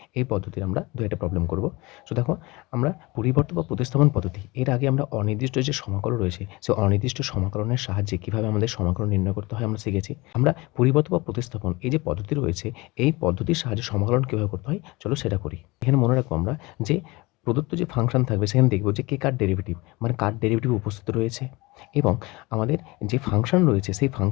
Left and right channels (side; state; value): right; quieter; 23.1 dB